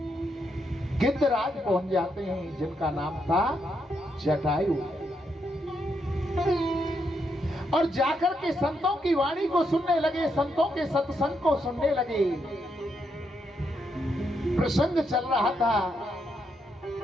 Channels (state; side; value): normal; both; correlation 0.79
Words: गिद्धराज पहुंच जाते हैं, जिनका नाम था जटायु, और जाकर के संतों की वाणी को सुनने लगे, संतों के सत्संग को सुनने लगे। प्रसंग चल रहा था